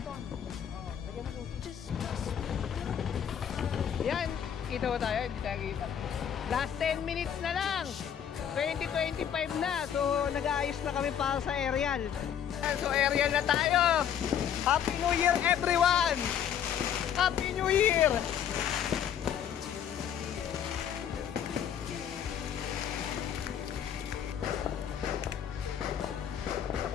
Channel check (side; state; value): right; quieter; 9.0 dB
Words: Yan, kita ba tayo? Hindi tayo kita. Last 10 minutes na lang. 2025 na. So, nag-aayos na kami para sa aerial. So, aerial na tayo. Happy New Year, everyone! Happy New Year!